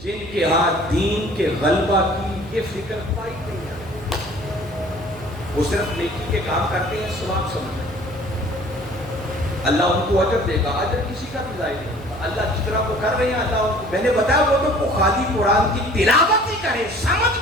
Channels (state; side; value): noise; right; hum, 16 dB below the sound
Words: جن کے ہاں دین کے غلبہ کی یہ فکر پائی نہیں ہے. وہ صرف نیکی کے کام کرتے ہیں، ثواب سمجھتے ہیں. اللہ ان کو اجر دے گا، اجر کسی کا بھی ضائع نہیں ہوگا۔ اللہ جس طرح وہ کر رہے ہیں اللہ ان کو، میں نے بتایا وہ تو خالی قرآن کی تلاوت ہی کرے، سمجھ